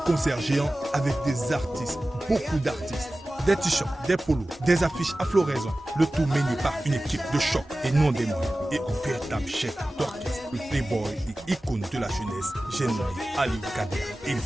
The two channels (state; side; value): normal; both; correlation 0.96